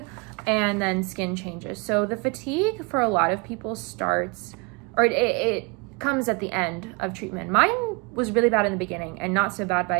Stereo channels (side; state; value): left; quieter; 29.2 dB